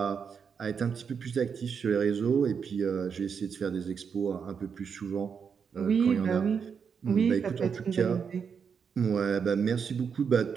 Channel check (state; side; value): quieter; left; 6.5 dB